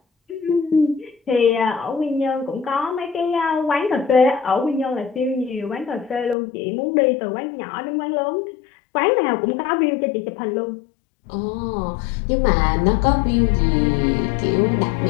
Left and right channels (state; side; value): drops out; right; at 6.4 s